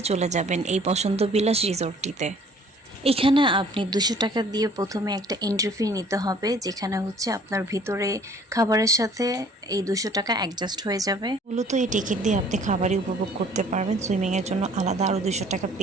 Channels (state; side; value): normal; both; correlation 0.55